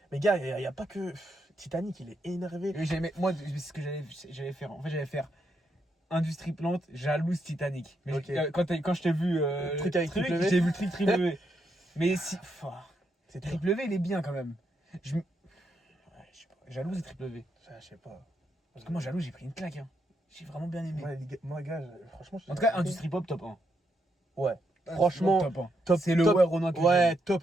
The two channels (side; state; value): both; normal; correlation 0.80